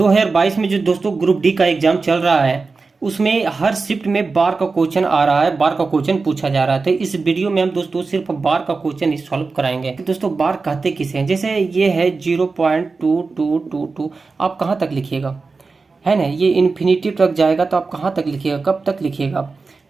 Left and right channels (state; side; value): quieter; left; 4.2 dB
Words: में जो दोस्तों ग्रुप डी का एग्जाम चल रहा है उसमें हर शिफ्ट में बार का क्वेश्चन आ रहा है, बार का क्वेश्चन पूछा जा रहा है। तो इस वीडियो में हम दोस्तों सिर्फ बार का क्वेश्चन ही सॉल्व कराएंगे। तो दोस्तों बार कहते किसे हैं? जैसे ये है 0.2222, आप कहाँ तक लिखिएगा, है ना? ये इन्फिनिटी तक जाएगा तो आप कहाँ तक लिखिएगा, कब तक लिखिएगा?